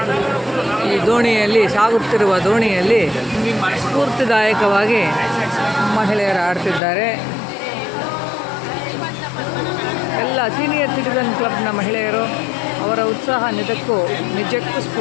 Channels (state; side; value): drops out; right; at 6.8 s